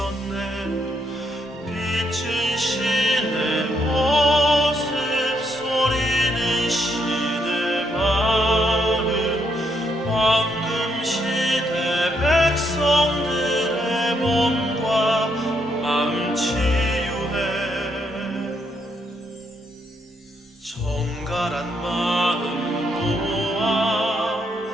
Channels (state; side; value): normal; both; correlation 0.76